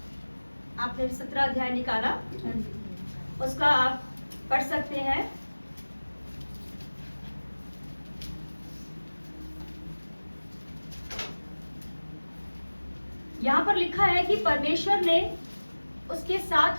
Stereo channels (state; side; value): inverted; both; correlation -1.00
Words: आपने 17 अध्याय निकाला, उसका आप पढ़ सकते हैं। यहाँ पर लिखा है कि परमेश्वर ने उसके